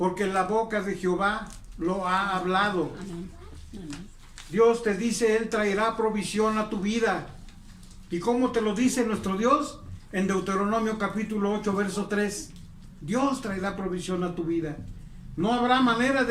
la boca de Jehová lo ha hablado. Amén. Amén. Dios te dice, Él traerá provisión a tu vida. ¿Y cómo te lo dice nuestro Dios? En Deuteronomio capítulo 8, verso 3. Dios traerá provisión a tu vida. No habrá manera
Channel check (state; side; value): identical; both; correlation 1.00